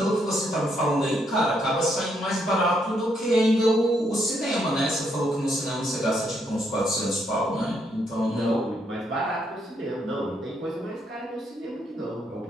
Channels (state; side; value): normal; both; correlation 0.75